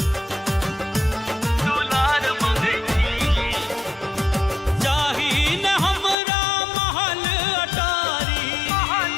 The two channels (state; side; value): drops out; right; at 6.2 s